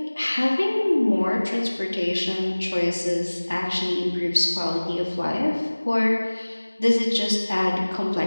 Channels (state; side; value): inverted; both; correlation -1.00